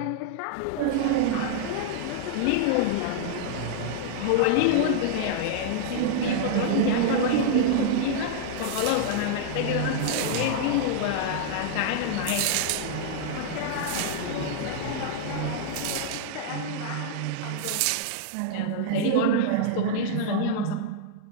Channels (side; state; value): both; different; correlation -0.01